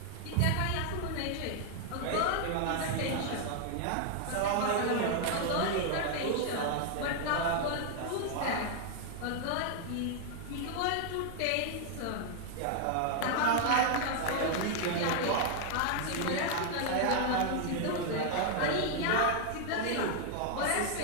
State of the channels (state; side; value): different; both; correlation 0.00